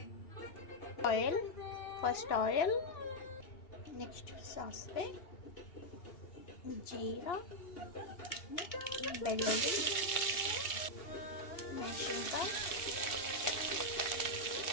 ಫಸ್ಟ್ ಆಯಿಲ್, ನೆಕ್ಸ್ಟ್ ಸಾಸಿವೆ, ಜೀರಾ, ಬೆಳ್ಳುಳ್ಳಿ, ಮೆಣಸಿನಕಾಯಿ,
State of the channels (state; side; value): late; right; 2.8 ms